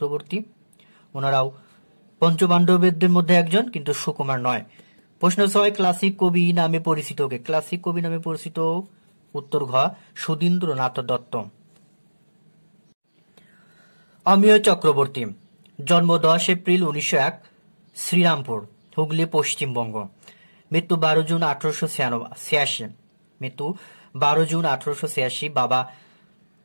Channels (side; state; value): both; inverted; correlation -1.00